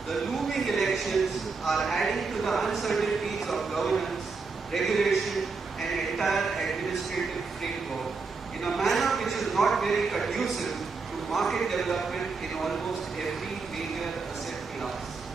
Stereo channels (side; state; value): left; quieter; 4.5 dB